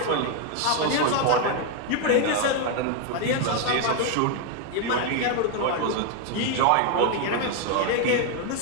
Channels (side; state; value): both; different; correlation 0.01